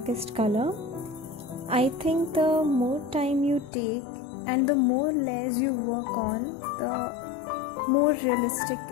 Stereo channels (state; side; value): drops out; right; at 3.7 s